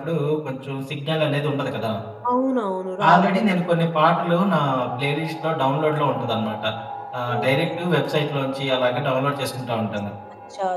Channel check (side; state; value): both; identical; correlation 1.00